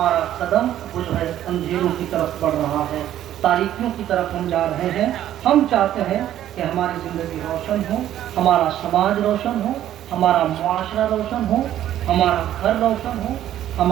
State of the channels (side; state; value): left; quieter; 12.0 dB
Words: قدم وہ جو ہے اندھیروں کی طرف بڑھ رہا ہے، تاریکیوں کی طرف ہم جا رہے ہیں۔ ہم چاہتے ہیں کہ ہماری زندگی روشن ہو، ہمارا سماج روشن ہو، ہمارا معاشرہ روشن ہو، ہمارا گھر روشن ہو،